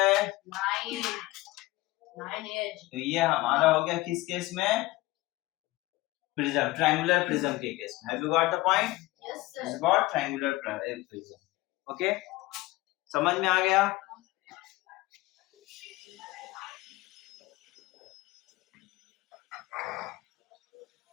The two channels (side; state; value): right; quieter; 19.3 dB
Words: 9 एज। तो ये हमारा हो गया किस केस में? प्रिज्म, ट्रायंगुलर प्रिज्म के केस में। Have you got the point? Yes sir. This is what triangular prism. Okay, समझ में आ गया?